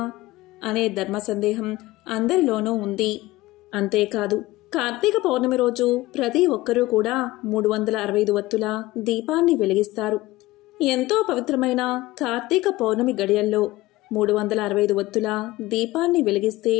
అనే ధర్మ సందేహం అందరిలోనూ ఉంది. అంతేకాదు కార్తీక పౌర్ణమి రోజు ప్రతి ఒక్కరూ కూడా 365 వత్తుల దీపాన్ని వెలిగిస్తారు. ఎంతో పవిత్రమైన కార్తీక పౌర్ణమి గడియల్లో 365 వత్తుల దీపాన్ని వెలిగిస్తే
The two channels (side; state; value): right; quieter; 18.3 dB